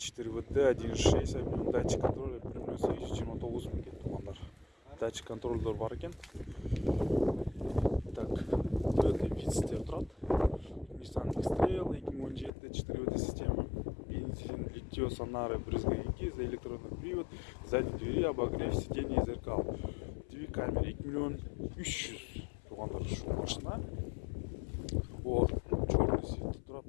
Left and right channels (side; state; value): right; drops out; at 12.5 s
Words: 1.6 объем, датчик контроля примерно 29 000 туғандар. Датчик контрольдер бар екен. Так, Toyota Vitz тұрады. Nissan X-Trail 2017 4WD система. Бензин, литье, сонары, брызговики, за электронный привод, задние двери, обогрев, сиденье и зеркал. Две камеры 2 миллион 300 туғандар. Шу машина. О, черный свет